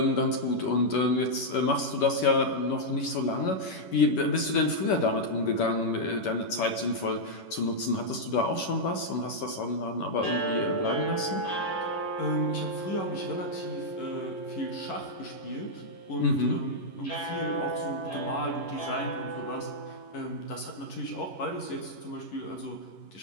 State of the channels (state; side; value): late; right; 11 ms